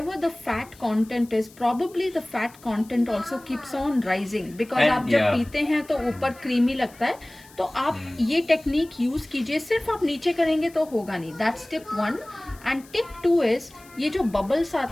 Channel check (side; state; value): left; noise; hiss, 24 dB below the sound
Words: the fat content is, probably the fat content also keeps on rising, because And, आप जब पीते हैं तो ऊपर creamy लगता है. तो आप ये टेक्निक यूज कीजिए. सिर्फ आप नीचे करेंगे तो होगा नहीं. That's tip 1. And tip 2 is, ये जो बबल्स